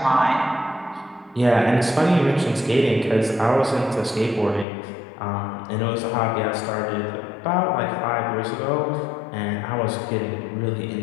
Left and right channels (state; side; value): drops out; right; at 4.7 s